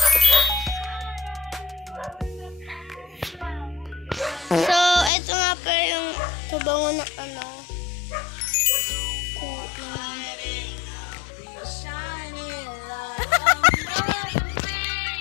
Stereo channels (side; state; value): right; drops out; at 5.1 s